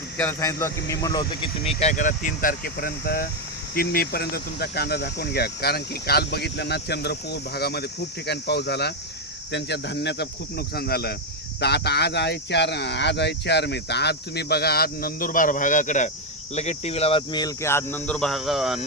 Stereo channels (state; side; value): normal; both; correlation 0.04